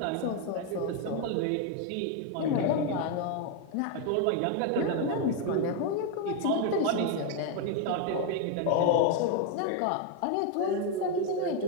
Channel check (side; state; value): both; different; correlation 0.01